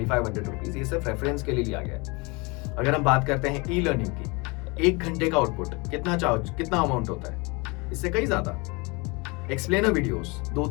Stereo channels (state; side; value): quieter; right; 27.6 dB